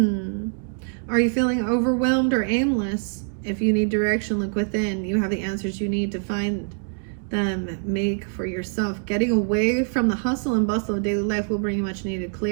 Are you feeling overwhelmed or aimless? If you need direction, look within. You have the answers you need to find them. Make for yourself. Getting away from the hustle and bustle of daily life will bring you much needed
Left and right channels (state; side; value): silent; left; 57 dB below the other